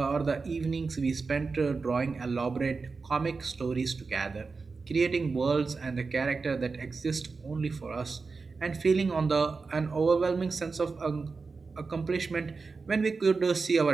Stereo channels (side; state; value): left; quieter; 4.4 dB